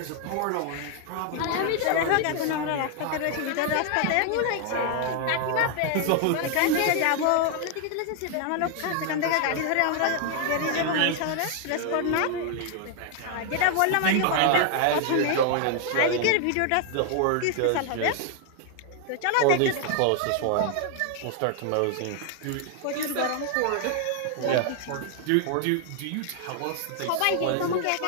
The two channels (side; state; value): both; different; correlation 0.00